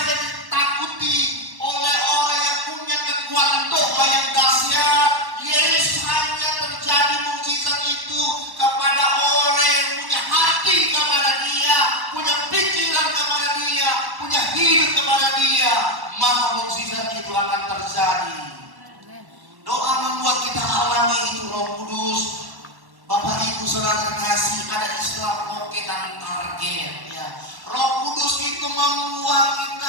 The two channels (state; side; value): late; left; 1.1 ms